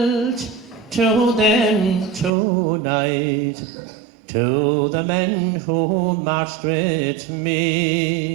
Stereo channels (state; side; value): drops out; left; at 2.3 s